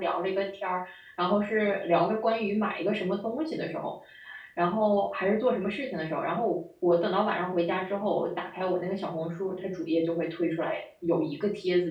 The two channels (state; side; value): identical; both; correlation 1.00